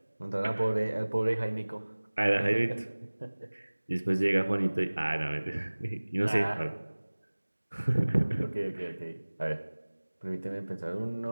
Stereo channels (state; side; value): inverted; both; correlation -1.00